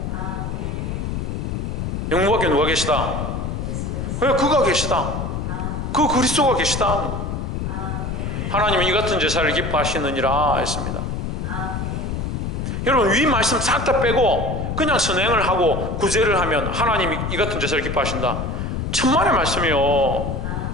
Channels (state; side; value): noise; left; rumble, 3 dB below the sound